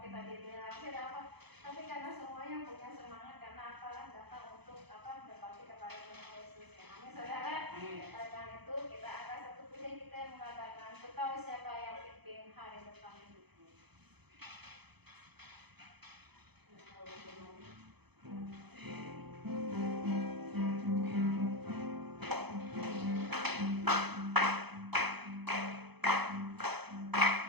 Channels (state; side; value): late; left; 0.98 ms